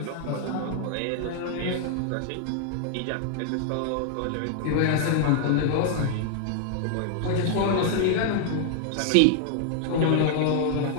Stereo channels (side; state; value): both; different; correlation 0.00